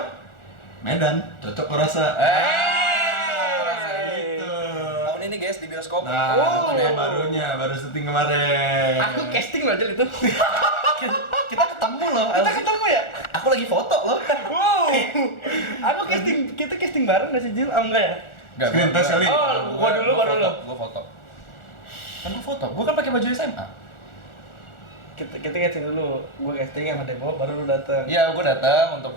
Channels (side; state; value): right; late; 1.4 ms